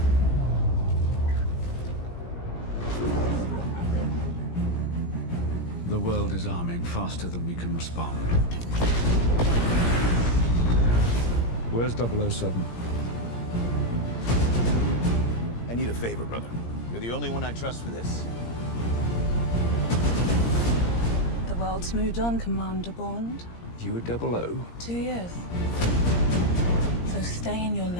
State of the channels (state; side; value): late; right; 17 ms